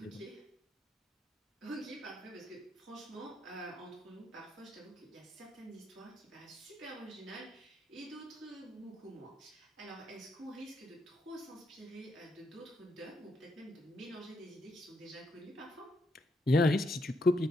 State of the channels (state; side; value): normal; both; correlation 0.77